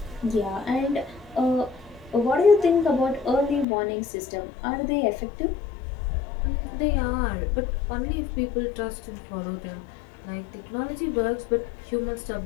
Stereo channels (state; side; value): drops out; right; at 3.7 s